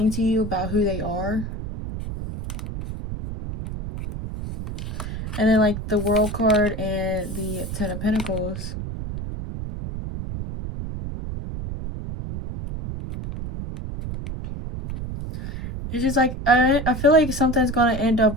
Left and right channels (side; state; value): right; noise; rumble, 7 dB below the sound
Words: to you about who they are. And then, like, the World card and the Ten of Pentacles. It's just like, I feel like something's going to end